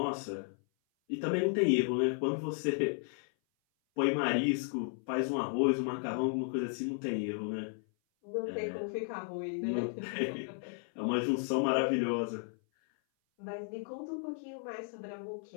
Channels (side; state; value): right; silent; 55 dB below the other